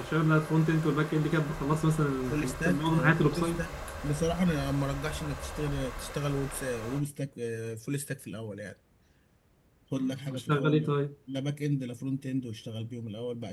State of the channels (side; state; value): both; identical; correlation 1.00